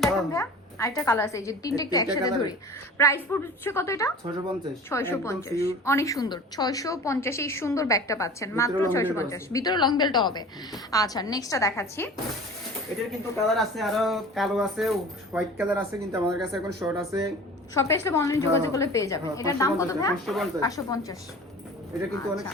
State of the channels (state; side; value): normal; both; correlation 0.40